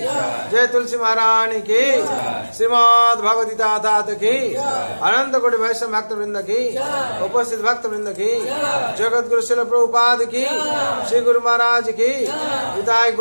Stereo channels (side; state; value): both; inverted; correlation -1.00